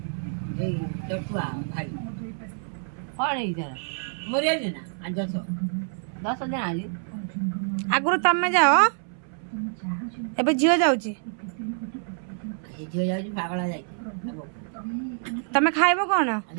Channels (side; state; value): left; silent; 60 dB below the other